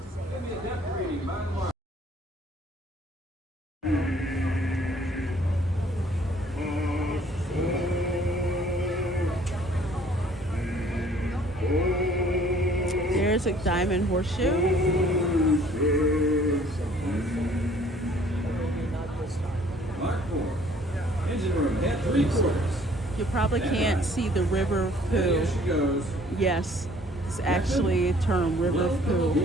There's a diamond horseshoe. Mark 4. Engine room at 3/4. You probably can't see the river of poo. There she goes. Yes, it's actually a term, river of poo.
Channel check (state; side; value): normal; both; correlation 0.57